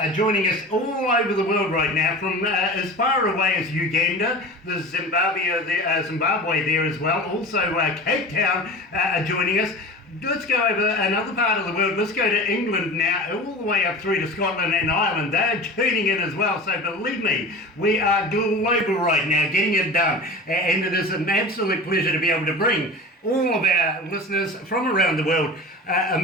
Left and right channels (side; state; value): both; normal; correlation 0.34